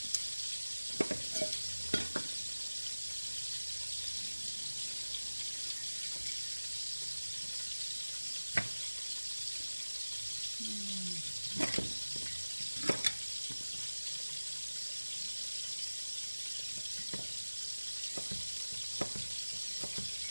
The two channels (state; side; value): inverted; both; correlation -1.00